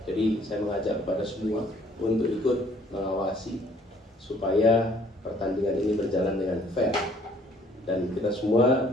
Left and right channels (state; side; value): normal; both; correlation 0.60